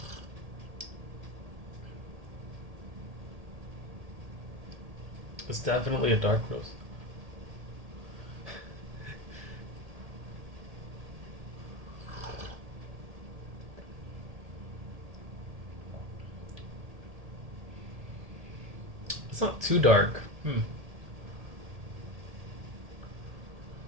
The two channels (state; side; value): late; left; 1.8 ms